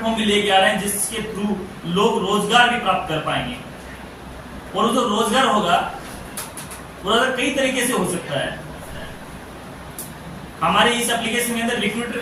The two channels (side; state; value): both; identical; correlation 1.00